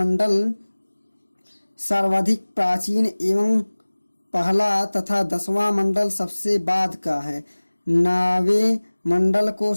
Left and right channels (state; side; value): inverted; both; correlation -1.00